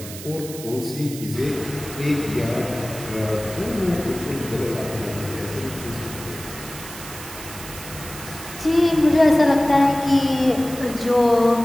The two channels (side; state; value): right; noise; hiss, 13 dB below the sound